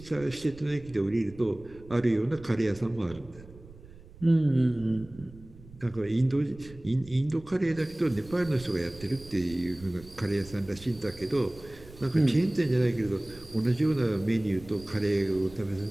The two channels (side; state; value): right; noise; rumble, 20 dB below the sound